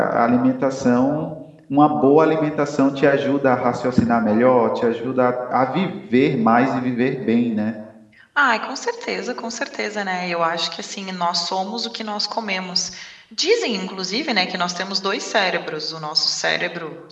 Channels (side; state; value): both; identical; correlation 1.00